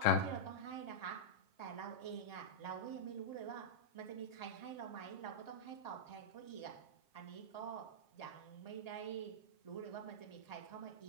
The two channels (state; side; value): late; right; 7.5 ms